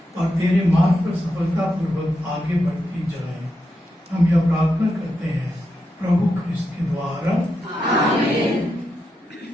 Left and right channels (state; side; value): normal; both; correlation 0.86